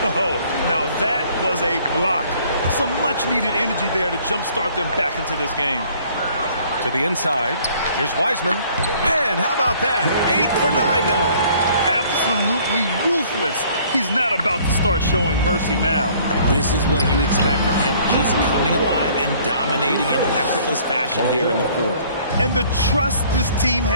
Oh, now that was a block. Some much-needed energy there to jumpstart them back into this game. To the inside. Here's Wiseman. And how about that? 8 for 9 now. Absolutely ruthless. He's not about to start showing mercy now. This is what you expect from him, just coming alive and dominating in effortless fashion here in the 4th. And the trust this team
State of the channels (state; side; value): inverted; both; correlation -0.57